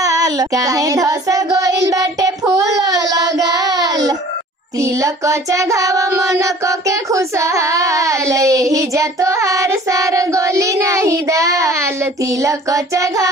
काहे धस गोइल बाटे फूल लगाल। तिलक चढ़ाव मन के खुशहाल, यही जा तोहार सार गोली नहीं दाल। तिलक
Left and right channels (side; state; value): both; normal; correlation 0.49